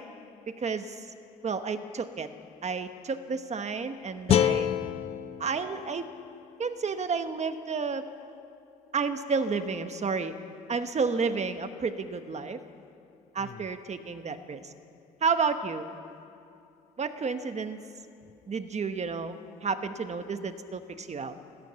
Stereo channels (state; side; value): normal; both; correlation 0.31